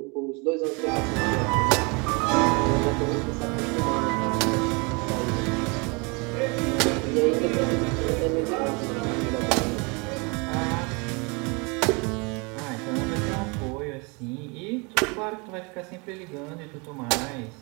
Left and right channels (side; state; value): left; quieter; 30.1 dB